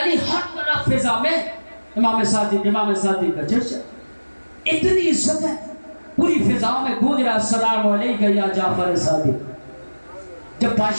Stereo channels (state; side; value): inverted; both; correlation -1.00